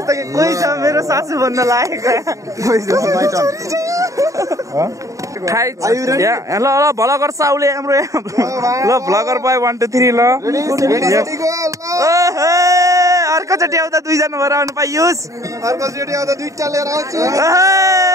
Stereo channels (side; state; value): left; late; 0.16 ms